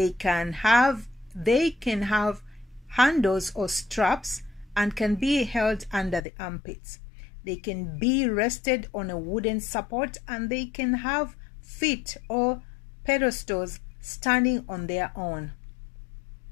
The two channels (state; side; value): drops out; right; at 6.2 s